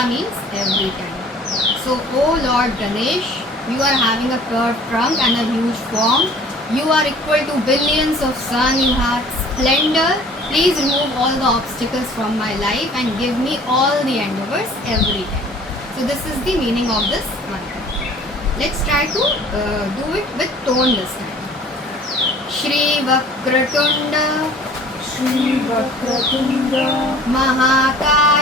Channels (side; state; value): both; normal; correlation 0.49